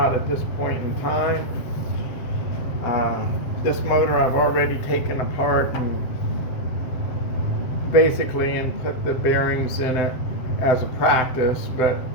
at this point in time. This motor I've already taken apart and put the bearings in it as a practice, but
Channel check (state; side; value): late; right; 7.4 ms